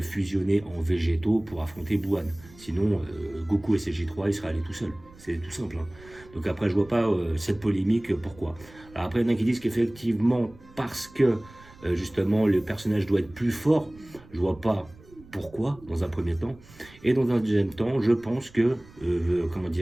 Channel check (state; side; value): noise; right; rumble, 23 dB below the sound